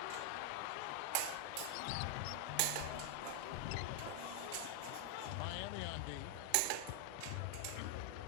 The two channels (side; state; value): both; different; correlation 0.00